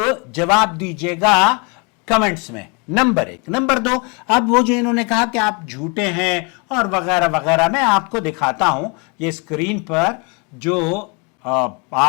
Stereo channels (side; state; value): right; quieter; 31.9 dB